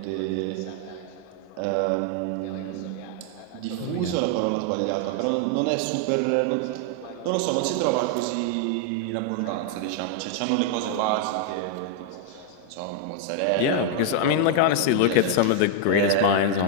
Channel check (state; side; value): different; both; correlation 0.00